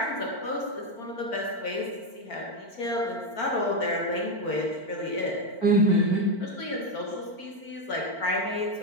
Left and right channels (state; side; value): late; right; 4.5 ms